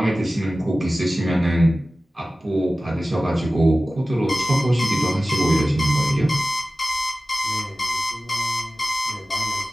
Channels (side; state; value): both; normal; correlation 0.96